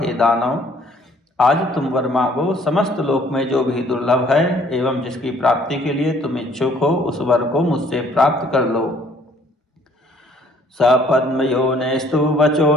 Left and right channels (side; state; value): both; normal; correlation 0.59